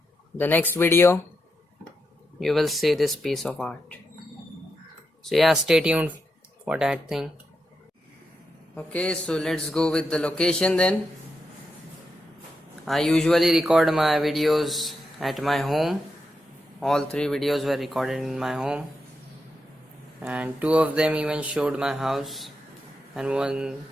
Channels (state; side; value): normal; both; correlation 0.85